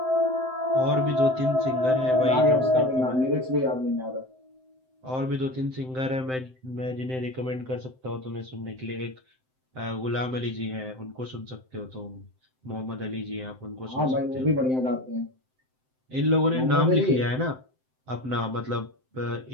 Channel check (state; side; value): late; left; 7.7 ms